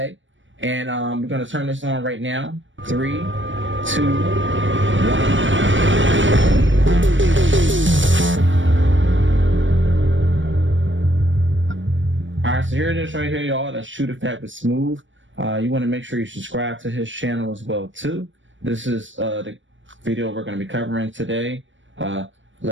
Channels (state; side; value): late; left; 0.56 ms